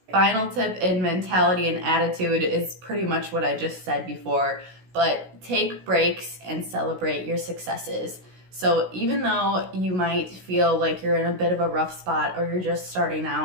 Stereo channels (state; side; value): late; left; 16 ms